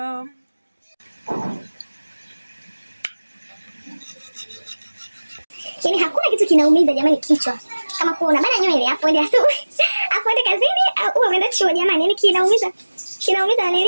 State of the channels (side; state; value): both; inverted; correlation -1.00